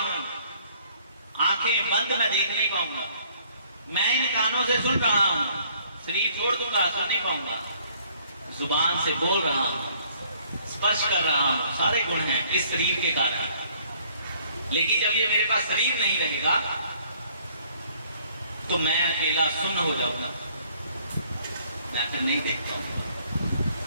आंखें बंद मैं देख नहीं पाऊंगा। मैं इन कानों से सुन रहा हूं, शरीर छोड़ दूंगा, सुन नहीं पाऊंगा। जुबान से बोल रहा हूं, स्पर्श कर रहा हूं, सारे गुण हैं इस शरीर के कारण। लेकिन जब ये मेरे पास शरीर नहीं रहेगा तो मैं अकेला सुन्न हो जाऊंगा, मैं फिर नहीं देख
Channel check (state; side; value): inverted; both; correlation -0.61